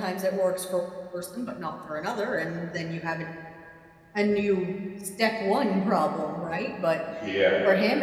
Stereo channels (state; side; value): identical; both; correlation 1.00